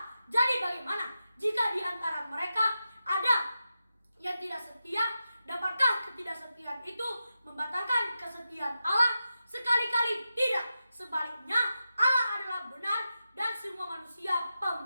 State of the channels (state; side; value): inverted; both; correlation -0.90